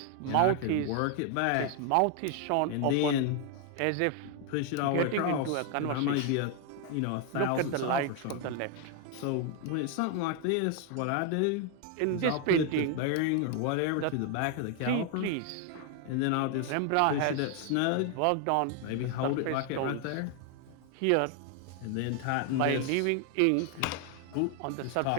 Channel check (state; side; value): different; both; correlation 0.00